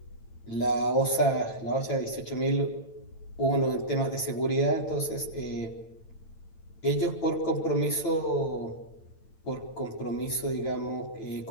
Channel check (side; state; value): right; late; 9.0 ms